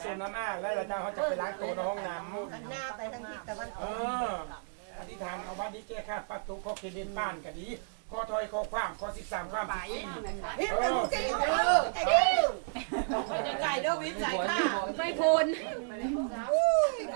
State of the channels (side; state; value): left; silent; digital silence